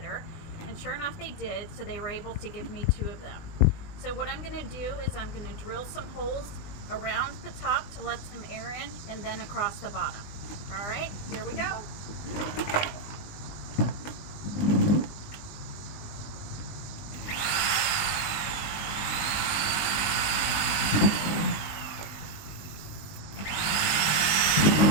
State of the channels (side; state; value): right; late; 20 ms